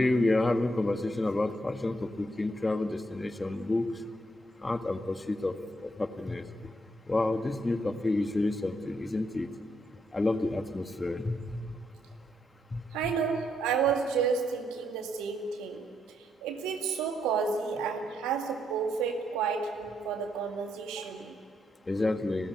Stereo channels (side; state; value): both; normal; correlation 0.77